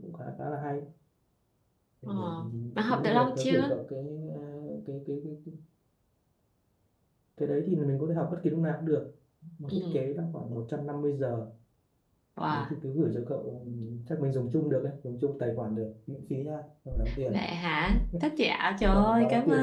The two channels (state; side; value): identical; both; correlation 1.00